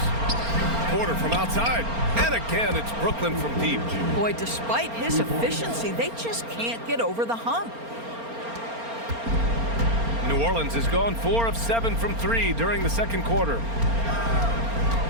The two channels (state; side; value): late; left; 4.3 ms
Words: Porter from outside. And again, it's Brooklyn from deep. Boy, despite his efficiency, they just can't get over the hump. New Orleans has gone 4 of 7 from 3 during the second quarter.